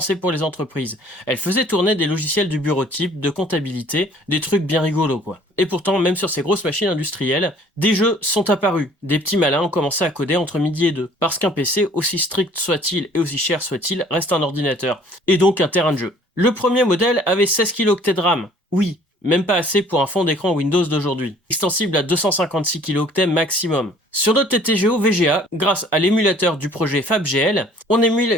pour les entreprises. Elle faisait tourner des logiciels du bureau type, de comptabilité, des trucs bien rigolos quoi. Et pourtant, même sur ces grosses machines industrielles, des jeux sont apparus. Des petits malins ont commencé à coder entre midi et deux. Parce qu'un PC, aussi strict soit-il et aussi cher soit-il, reste un ordinateur. Et donc un terrain de jeu. Le premier modèle avait 16 kilooctets de RAM. Oui, même pas assez pour un fond d'écran Windows d'aujourd'hui. Extensible à 256 kilooctets maximum. Sur notre TTGO VGA, grâce à l'émulateur du projet FabGL, on émule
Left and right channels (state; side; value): normal; both; correlation 0.55